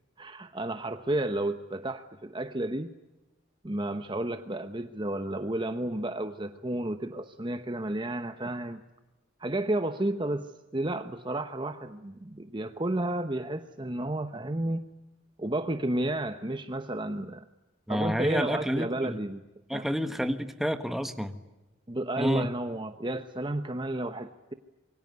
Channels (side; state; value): both; normal; correlation 0.74